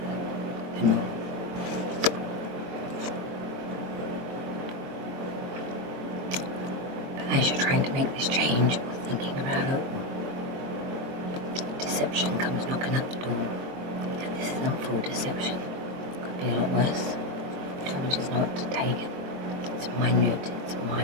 the norm. But as you're trying to make this change or thinking about it, deception comes knocking at the door. And this isn't full deception. Could be a lot worse. Tell me just not to take it. It's minute, it's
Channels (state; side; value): late; left; 23 ms